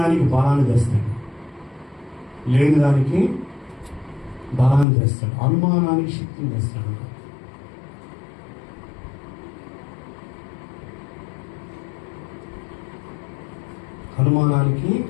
బలాన్ని తెస్తాడు. లేని దానికి బలాన్ని తెస్తాడు. అనుమానానికి శక్తిని తెస్తాడు. అనుమానానికి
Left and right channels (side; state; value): right; drops out; at 4.9 s